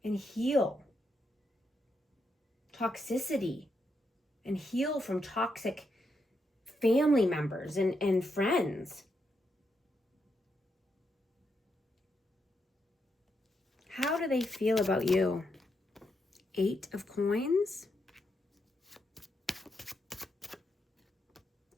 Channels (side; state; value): both; normal; correlation 0.82